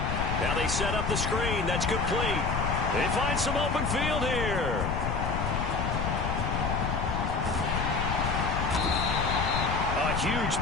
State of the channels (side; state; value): left; noise; rumble, 1 dB below the sound